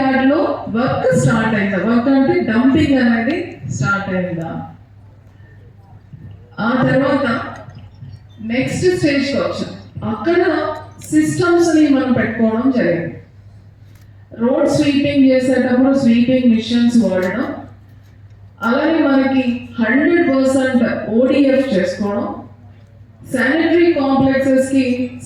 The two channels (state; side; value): identical; both; correlation 1.00